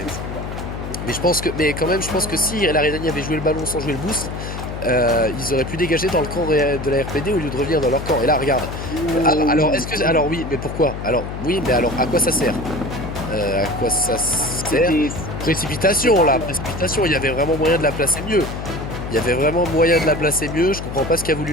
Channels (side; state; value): left; noise; hum, 7 dB below the sound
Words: je pense que si la Redani avait joué le ballon sans jouer le boost, ils auraient pu dégager dans le camp de la RPD au lieu de revenir dans leur camp. Et là, regarde. Alors oui, mais pourquoi? Alors oui, mais alors à quoi ça sert? Précipitation, il y avait vraiment moyen de la placer mieux. Je comprends pas ce qui a